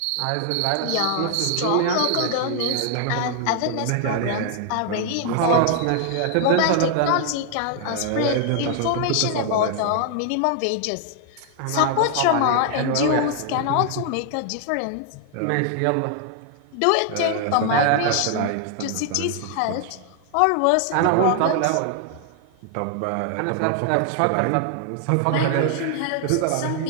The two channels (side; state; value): both; different; correlation 0.00